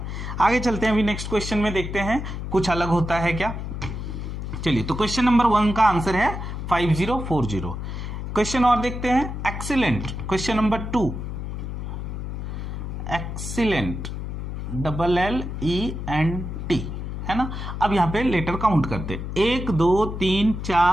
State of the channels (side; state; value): left; noise; hum, 6 dB below the sound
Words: आगे चलते हैं, अभी नेक्स्ट क्वेश्चन में देखते हैं कुछ अलग होता है क्या। चलिए, तो क्वेश्चन नंबर 1 का आंसर है 5040। क्वेश्चन और देखते हैं, excellent. Question number 2, excellent, LLENT, है ना। अब यहां पे लेटर काउंट करते, 1 2 3